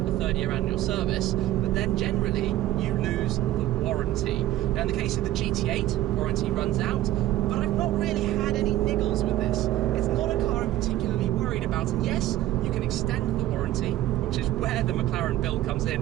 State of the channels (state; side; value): quieter; left; 14.4 dB